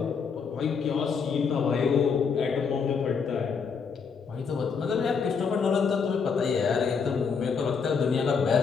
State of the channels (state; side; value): quieter; right; 5.8 dB